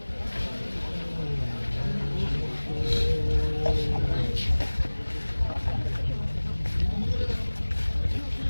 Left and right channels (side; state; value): both; inverted; correlation -1.00